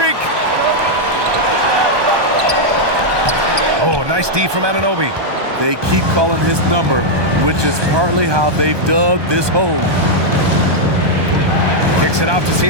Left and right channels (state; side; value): late; left; 1.2 ms